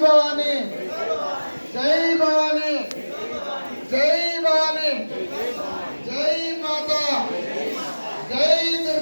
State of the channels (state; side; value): inverted; both; correlation -1.00